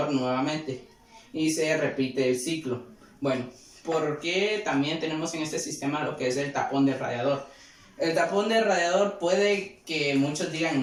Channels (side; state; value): both; identical; correlation 1.00